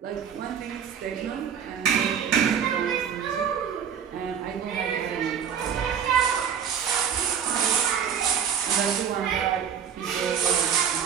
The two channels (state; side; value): quieter; left; 7.9 dB